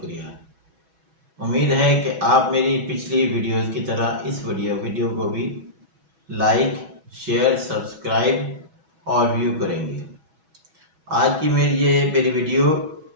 उम्मीद है कि आप मेरी पिछली वीडियोस की तरह इस वीडियो को भी लाइक, शेयर, सब्सक्राइब और व्यू करेंगे। आज की मेरी वीडियो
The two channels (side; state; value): left; late; 6.2 ms